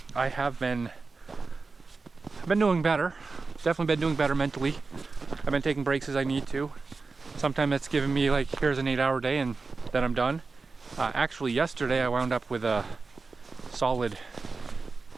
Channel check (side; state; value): left; quieter; 4.2 dB